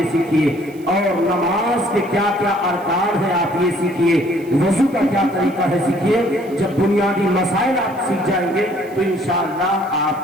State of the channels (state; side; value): noise; right; hiss, 26 dB below the sound